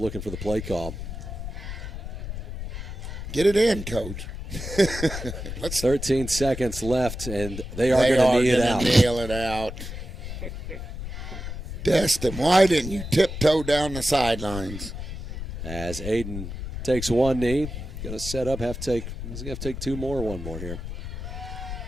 for the play call. Get it in, Coach. 13 seconds left, and they are They going to are knee it gonna out. nail it out. Destin, why didn't you tiptoe down the sidelines? As Aiden takes one knee, going to set up, he's going to have to take 2 more, 1 more here.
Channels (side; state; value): left; noise; rumble, 8 dB below the sound